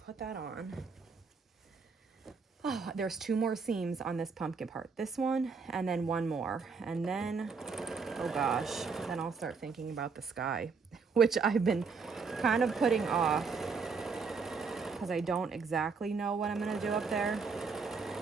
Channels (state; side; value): quieter; left; 5.0 dB